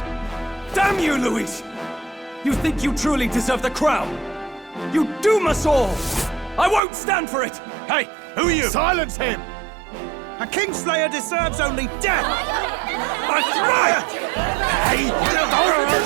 Damn you, Luis! You think you truly deserve the crown? You doom us all! I won't stand for it! Hey, who are you? Silence him! A Kingslayer deserves only death! That's right! Hey,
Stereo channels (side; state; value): left; drops out; at 6.8 s